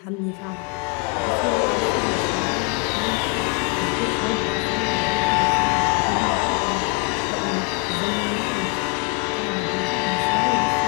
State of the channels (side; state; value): right; quieter; 28.5 dB